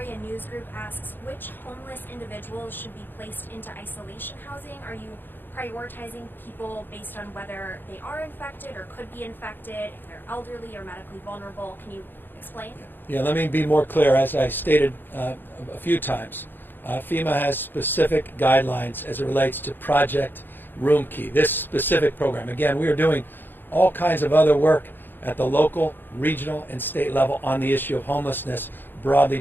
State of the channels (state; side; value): late; right; 0.095 ms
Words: News Group asks, which homeless individuals should be placed into isolation housing? Are you prioritizing people based on whether they are infected or could be infected, if they're elderly or medically vulnerable? Can you explain? Yeah, let me be more clear. As I stated a few times, FEMA has specific guidelines as it relates to Project Room Key, this specific program. Again, we are doing all kinds of other work at the local, regional, and state level on the issue of homelessness, broadly